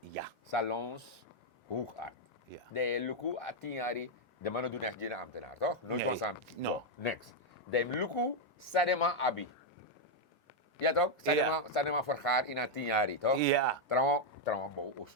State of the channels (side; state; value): both; normal; correlation 0.00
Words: Salons, hoogaard. Ja. De luku at 10 jaar, de mannen doen echt geen ambtenaar, toch? Nooit Nee, was aan. no. Next. De luku, sadema abi. Ja toch? Sadema vergaar in 10 jaar, toch? Ja. Trouwens, mo